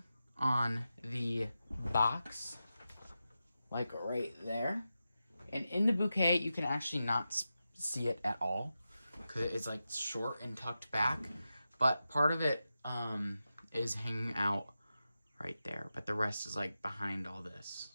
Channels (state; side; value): inverted; both; correlation -0.91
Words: on the box, like right there. And in the bouquet, you can actually not see it at all because it's like short and tucked back. But part of it is hanging out right there. But the rest is like behind all this.